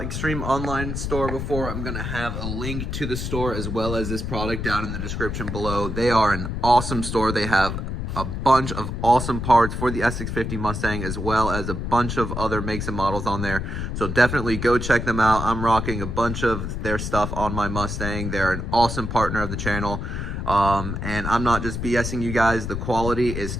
Extreme Online Store before, I'm gonna have a link to the store as well as this product down in the description below. They are an awesome store. They have a bunch of awesome parts for the S650 Mustang as well as a bunch of other makes and models on there. So definitely go check them out. I'm rocking a bunch of their stuff on my Mustang. They're an awesome partner of the channel. And I'm not just BSing you guys, the quality is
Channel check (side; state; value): left; noise; rumble, 4 dB below the sound